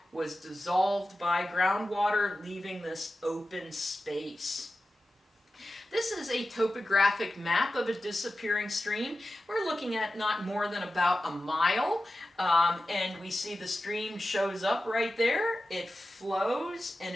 was dissolved by groundwater, leaving this open space. This is a topographic map of a disappearing stream. We're looking at not more than about a mile, and we see the stream shows up right there. It flows and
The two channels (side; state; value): both; normal; correlation 0.93